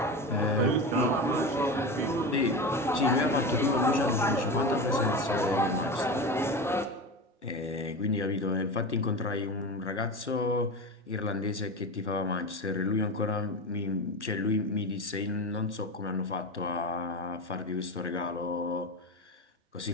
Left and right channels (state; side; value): normal; both; correlation 0.24